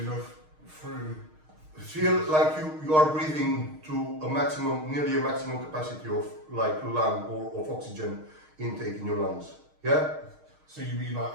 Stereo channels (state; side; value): late; left; 6.5 ms